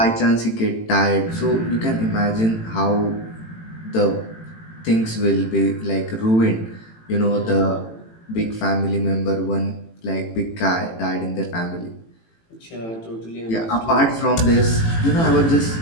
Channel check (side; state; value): right; late; 18 ms